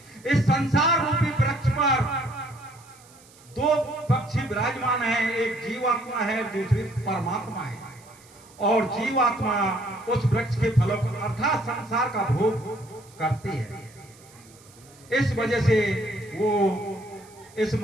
इस संसार रूपी वृक्ष पर दो पक्षी विराजमान हैं, एक जीवात्मा है, दूसरी परमात्मा है। और जीवात्मा उस वृक्ष के फलों को अर्थात संसार का भोग करती है। इस वजह से वो इस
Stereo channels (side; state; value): right; noise; hiss, 25 dB below the sound